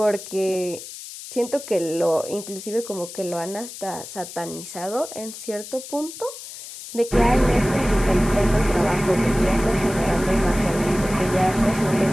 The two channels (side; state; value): left; noise; hiss, 13 dB below the sound